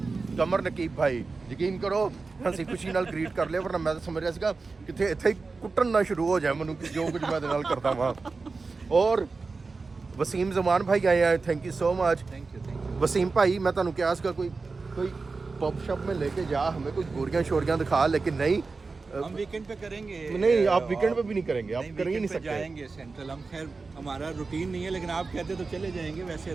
भाई। यकीन करो हंसी खुशी नाल ग्रीट कर लिया, वरना मैं तो समझ रहा सीगा किथे इत्थे ही कुट्टन ना शुरू हो जाए मैनू कि जो कुछ मैं नाल करता वहाँ। और वसीम जमान भाई आए हैं, thank you so much. Thank you. Wasim भाई मैं तुहानू क्या इसका कोई पब शॉप में लेके जा, हमें कुछ गोरियां शोरियां दिखा, लेकिन नहीं हम वीकेंड पे करेंगे। नहीं आप वीकेंड पे भी नहीं करेंगे, आप कर ही नहीं सकते। जाएंगे सेंट्रल, हम खैर हमारा रूटीन नहीं है, लेकिन आप कहते तो चले जाएंगे। वैसे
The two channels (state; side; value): quieter; left; 4.1 dB